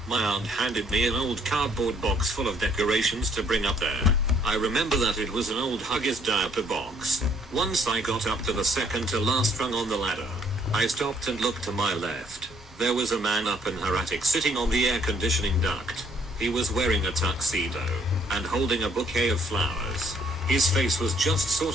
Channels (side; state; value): both; normal; correlation 0.65